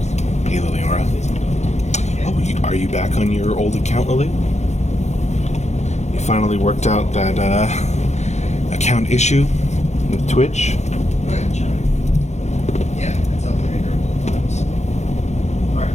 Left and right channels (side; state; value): right; late; 0.33 ms